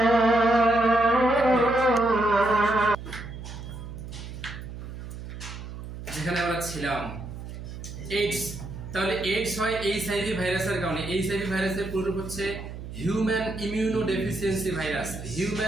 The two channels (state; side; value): noise; right; hum, 10 dB below the sound